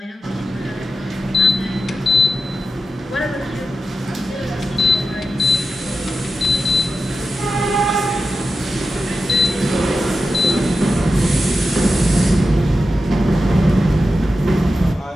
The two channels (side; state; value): both; normal; correlation 0.91